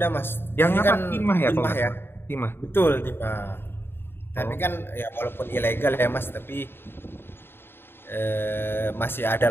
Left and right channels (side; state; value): right; late; 0.11 ms